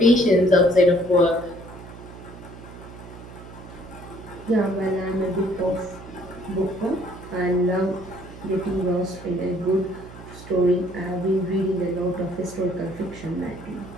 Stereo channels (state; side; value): noise; right; hum, 16 dB below the sound